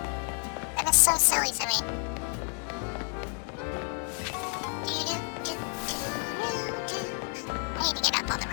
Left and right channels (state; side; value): quieter; right; 38.1 dB